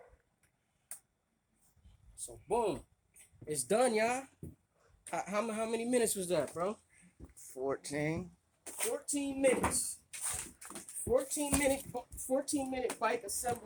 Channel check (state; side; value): identical; both; correlation 1.00